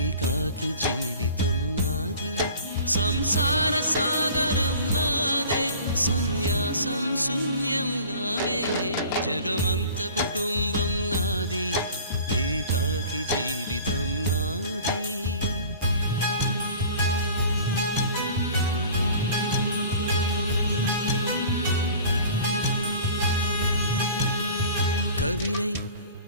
జీవితం నాది. సంసార సాగరం నాదే, సన్యాసం శూన్యం నావే. జగమంత కుటుంబం నాది, ఏకాకి జీవితం నాది. కవినై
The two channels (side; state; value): both; inverted; correlation -0.44